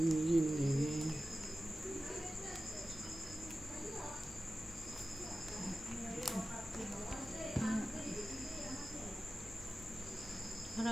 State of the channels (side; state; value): both; normal; correlation 0.95